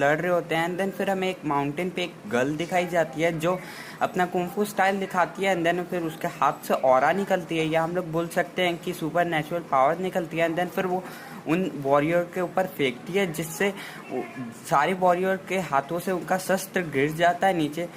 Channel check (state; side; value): identical; both; correlation 1.00